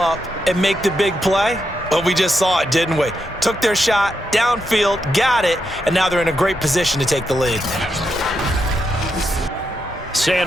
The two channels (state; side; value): normal; both; correlation 0.83